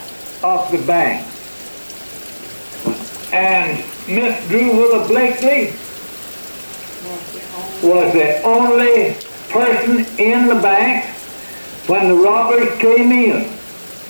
of the bank. And Miss Drew Willa Blakely was the only person in the bank when the robbers came in.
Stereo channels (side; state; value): both; inverted; correlation -1.00